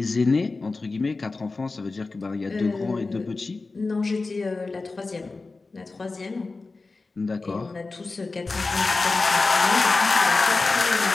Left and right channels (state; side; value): quieter; right; 3.7 dB